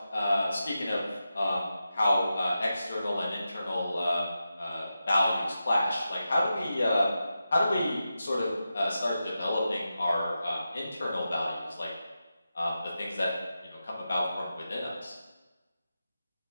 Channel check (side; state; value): both; inverted; correlation -0.90